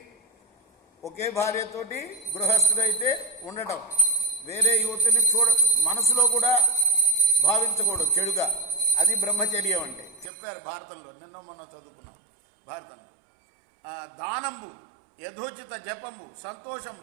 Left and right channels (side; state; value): left; drops out; at 10.3 s